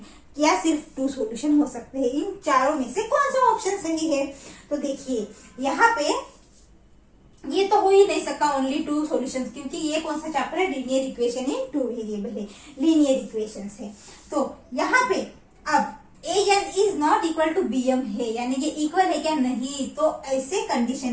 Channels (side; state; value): both; identical; correlation 1.00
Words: या सिर्फ 2 सॉल्यूशन हो सकते हैं। इन चारों में से कौन सा ऑप्शन सही है? तो देखिए यहाँ पे ये तो हो ही नहीं सकता ओनली 2 सॉल्यूशंस, क्योंकि ये कौन सा चैप्टर है? लीनियर इक्वेशन इन 2 वेरिएबल है, लीनियर इक्वेशंस है। तो यहाँ पे अब an is not equal to bm है, यानी ये इक्वल है क्या? नहीं। तो ऐसे